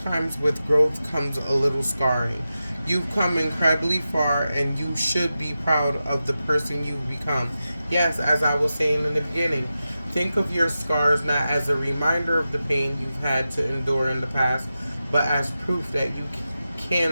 with growth comes a little scarring. You've come incredibly far, and you should be proud of the person you've become. Yes, as I was saying in the beginning, think of your scars not as a reminder of the pain you've had to endure in the past, but as proof that you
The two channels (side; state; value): both; inverted; correlation -0.92